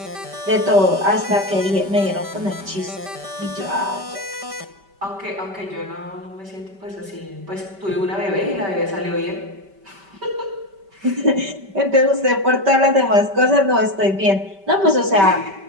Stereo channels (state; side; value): late; left; 5.1 ms